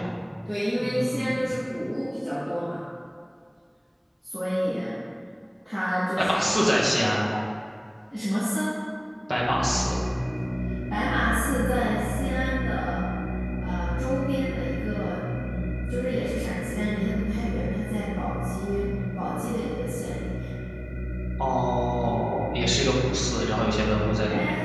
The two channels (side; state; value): both; identical; correlation 1.00